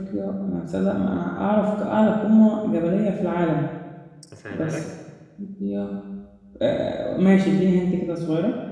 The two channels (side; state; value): both; identical; correlation 1.00